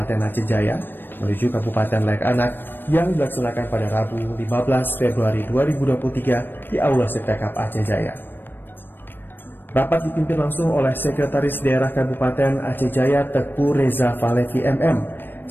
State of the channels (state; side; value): late; right; 0.096 ms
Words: Aceh Jaya menuju Kabupaten Layak Anak yang dilaksanakan pada Rabu 15 Februari 2023 di Aula Settekap Aceh Jaya. Rapat dipimpin langsung oleh Sekretaris Daerah Kabupaten Aceh Jaya Teku Reza Falevi MM,